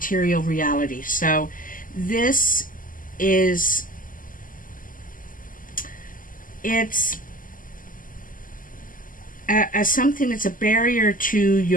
reality. So this is, it's something that's a barrier to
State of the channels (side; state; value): right; late; 0.40 ms